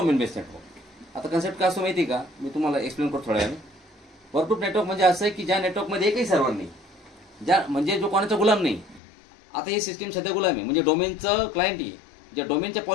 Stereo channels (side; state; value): right; drops out; at 9.0 s